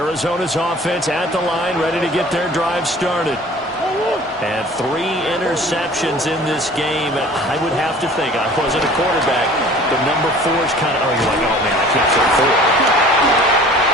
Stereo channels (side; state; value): both; normal; correlation 0.47